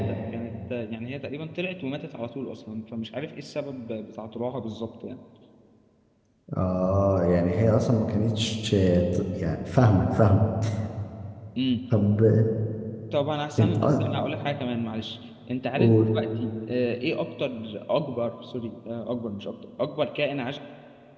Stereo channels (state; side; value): identical; both; correlation 1.00